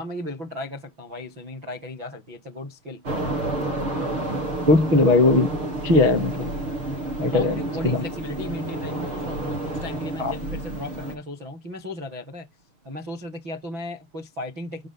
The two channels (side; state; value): left; late; 6.6 ms